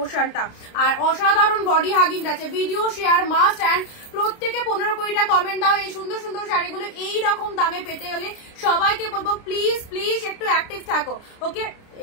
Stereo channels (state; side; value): late; right; 29 ms